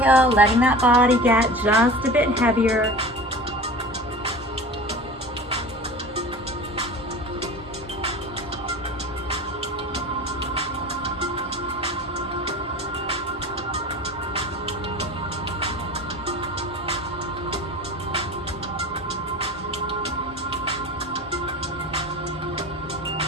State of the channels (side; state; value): both; normal; correlation 0.36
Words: letting that body get just a bit heavier.